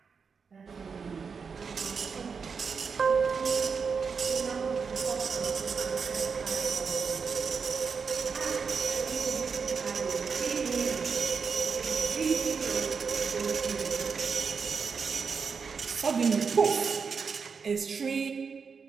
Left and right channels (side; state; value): left; quieter; 5.6 dB